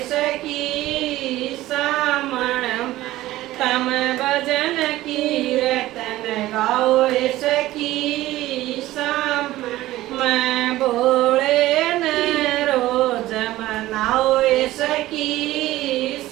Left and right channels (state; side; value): quieter; left; 16.2 dB